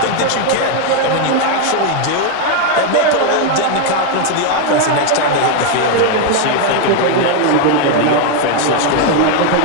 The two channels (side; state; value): both; different; correlation 0.01